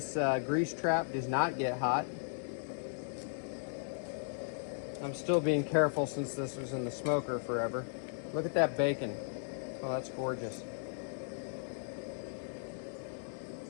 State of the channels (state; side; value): silent; right; 54 dB below the other